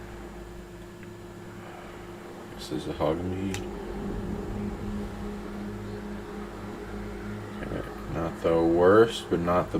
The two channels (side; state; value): both; identical; correlation 1.00